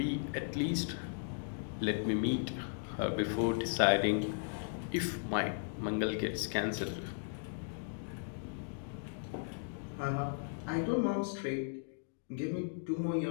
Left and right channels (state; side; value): silent; right; digital silence